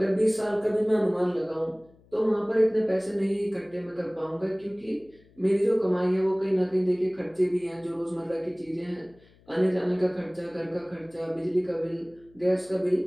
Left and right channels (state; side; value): noise; left; hum, 29 dB below the sound